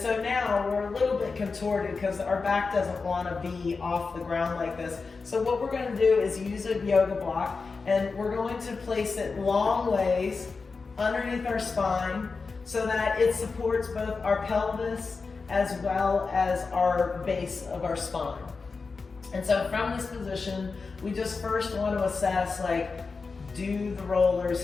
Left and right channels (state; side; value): quieter; right; 4.5 dB